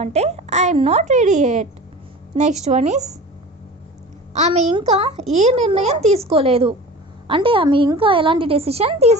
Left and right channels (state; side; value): normal; both; correlation 0.37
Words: అంటే I'm not ready at. Next one is, ఆమె ఇంకా ఏ నిర్ణయం తీసుకోలేదు అంటే ఆమె ఇంకా ఎలాంటి డెసిషన్